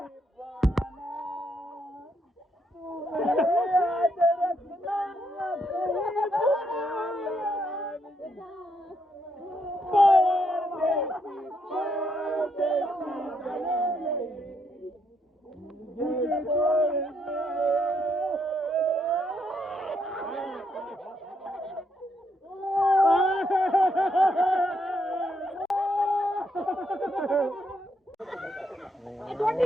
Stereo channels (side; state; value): both; normal; correlation 0.76